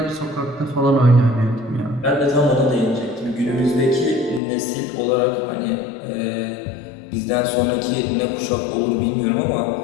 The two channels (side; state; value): right; drops out; at 4.4 s